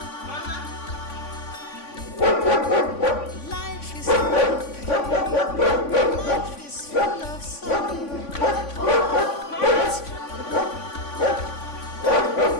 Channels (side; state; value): right; late; 3.5 ms